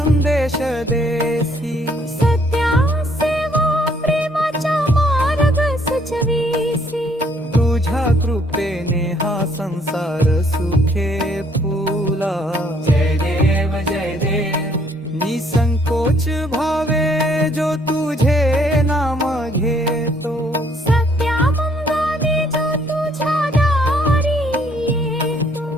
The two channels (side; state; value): both; normal; correlation 0.65